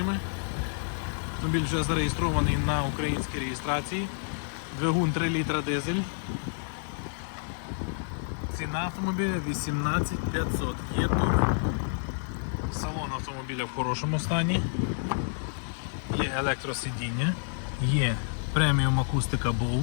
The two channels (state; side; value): silent; right; digital silence